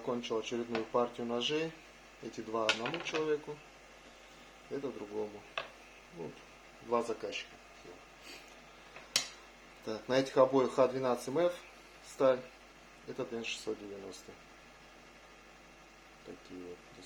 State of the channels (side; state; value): both; identical; correlation 1.00